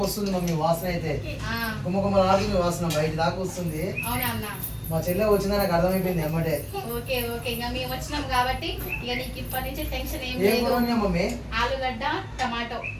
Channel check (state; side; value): identical; both; correlation 1.00